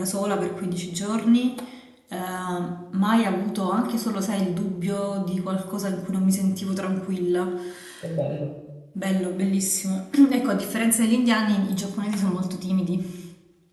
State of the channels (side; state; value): both; identical; correlation 1.00